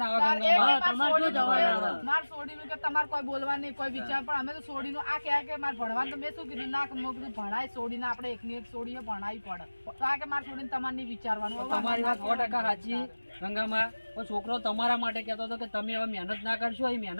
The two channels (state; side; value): inverted; both; correlation -1.00